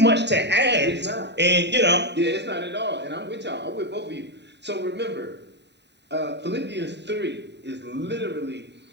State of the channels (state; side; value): late; left; 0.50 ms